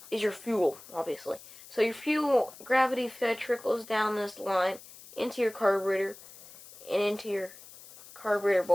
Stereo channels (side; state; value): left; noise; hiss, 19 dB below the sound